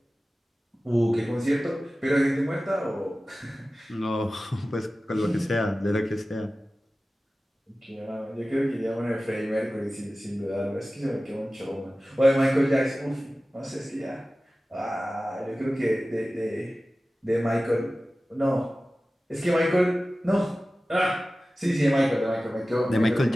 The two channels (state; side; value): normal; both; correlation 0.96